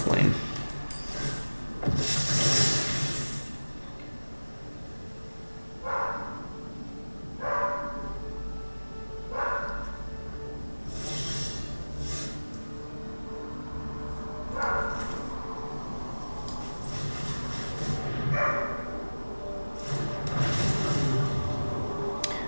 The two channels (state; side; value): inverted; both; correlation -1.00